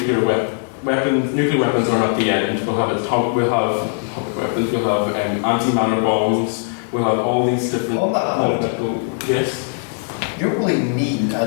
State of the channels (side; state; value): right; silent; 60 dB below the other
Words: weapons are not the end. We'll have atomic weapons, we'll have anti-matter bombs, we'll have all these different... On that point, yes? You don't really need an